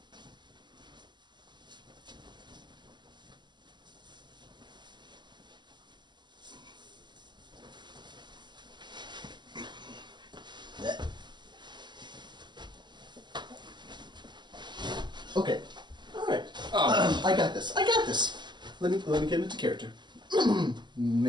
Okay. All right. I got this. I got this. Let me get into character.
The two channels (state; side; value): late; left; 0.21 ms